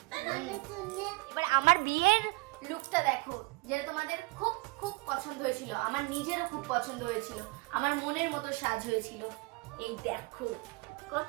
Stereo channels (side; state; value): left; quieter; 25.1 dB